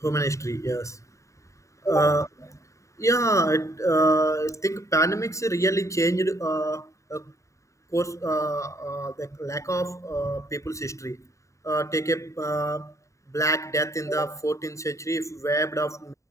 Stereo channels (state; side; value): late; right; 0.15 ms